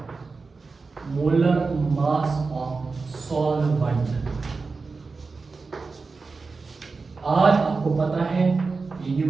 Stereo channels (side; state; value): left; quieter; 4.3 dB